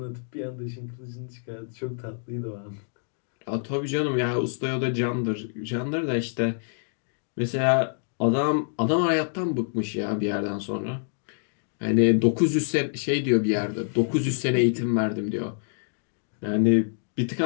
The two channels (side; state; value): right; silent; digital silence